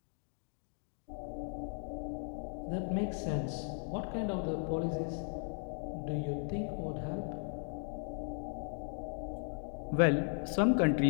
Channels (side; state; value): right; silent; 53 dB below the other